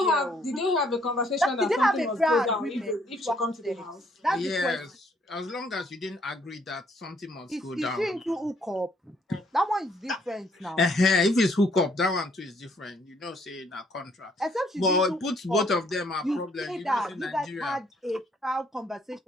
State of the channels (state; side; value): normal; both; correlation 0.67